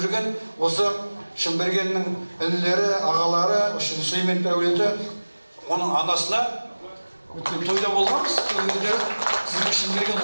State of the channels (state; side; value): inverted; both; correlation -1.00